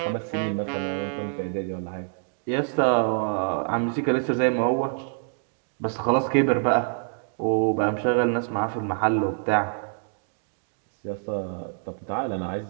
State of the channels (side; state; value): left; silent; digital silence